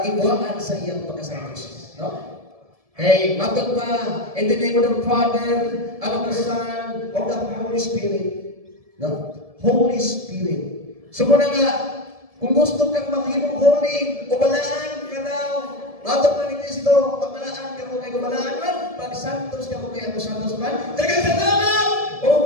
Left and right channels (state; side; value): late; left; 1.7 ms